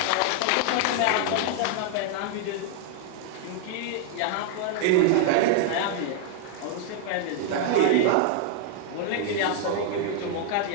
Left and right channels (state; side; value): different; both; correlation 0.00